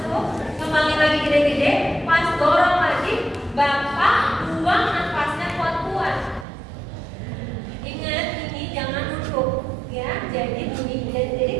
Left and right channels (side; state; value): left; drops out; at 6.5 s